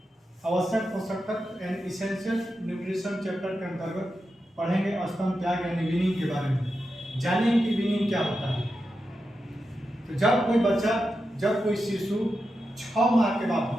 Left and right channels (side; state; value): both; normal; correlation 0.89